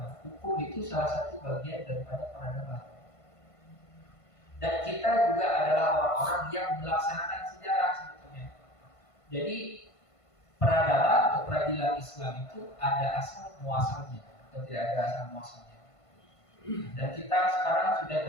Hukum itu salah satu bagian daripada peradaban. Dan kita juga adalah orang-orang yang melaksanakan sejarah sebetulnya. Jadi peradaban atau peradilan Islam itu ada asal muasalnya atau tidak ada asal muasalnya. Dan kita sekarang sudah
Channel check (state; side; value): late; right; 1.5 ms